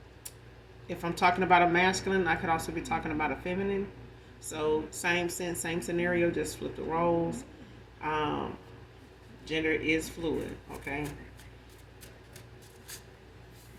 If I'm talking about a masculine, I could also be talking about a feminine. So same sense, same scenario, just flip the roles. Gender is fluid, okay?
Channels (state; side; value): identical; both; correlation 1.00